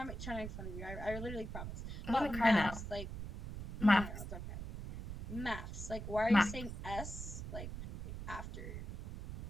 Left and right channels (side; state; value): right; noise; rumble, 7 dB below the sound